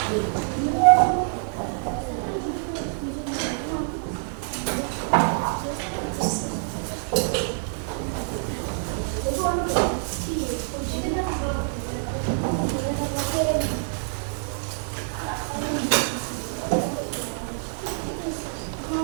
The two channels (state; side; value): silent; left; 61 dB below the other